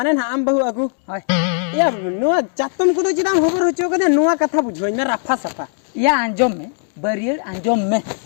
nak ambahu aku? Hai. Ya, nuah jatuh ko tu jadi hobar hucu ko deh nuah kata bujuan me rafa safa. Ya anjom me. Bari anjom me.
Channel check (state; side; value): silent; right; 58 dB below the other